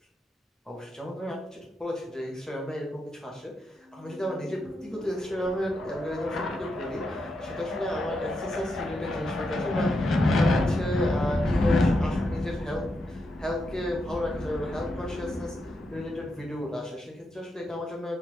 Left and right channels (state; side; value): normal; both; correlation 0.84